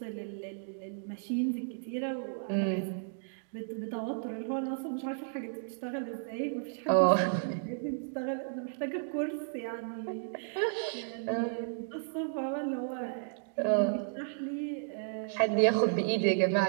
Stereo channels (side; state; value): left; silent; digital silence